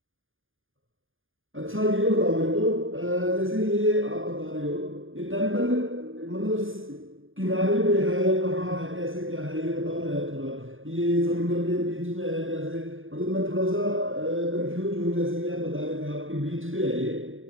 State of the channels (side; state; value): left; late; 0.59 ms